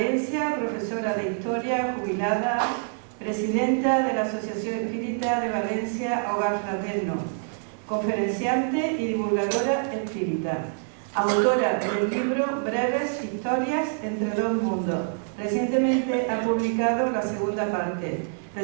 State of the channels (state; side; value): silent; left; 61 dB below the other